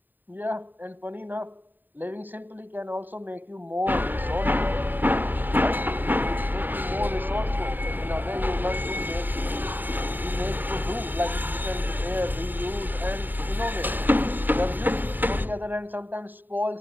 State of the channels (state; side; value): late; left; 0.090 ms